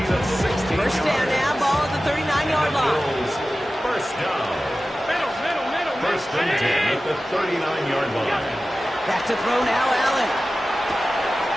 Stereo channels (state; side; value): normal; both; correlation 0.95